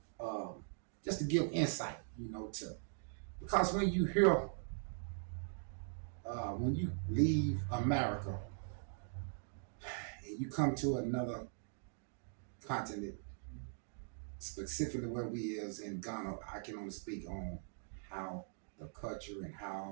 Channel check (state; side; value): silent; left; digital silence